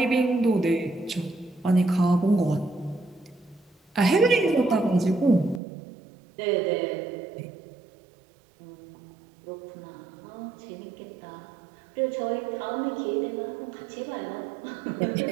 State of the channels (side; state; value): left; drops out; at 5.6 s